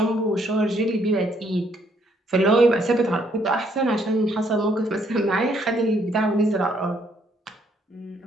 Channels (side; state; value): both; normal; correlation 0.69